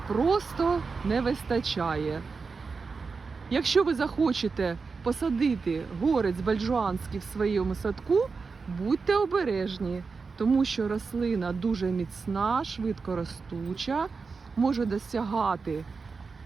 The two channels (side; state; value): left; quieter; 4.7 dB